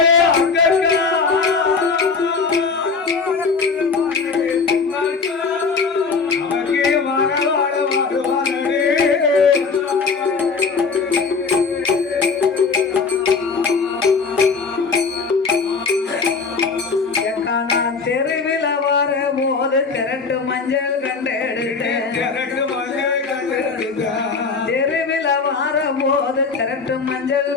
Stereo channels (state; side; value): quieter; right; 4.8 dB